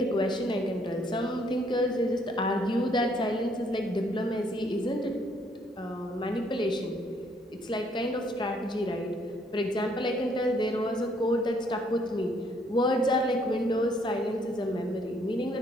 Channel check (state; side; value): normal; both; correlation 0.67